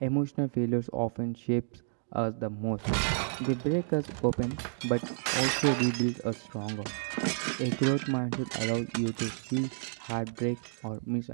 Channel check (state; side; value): silent; left; digital silence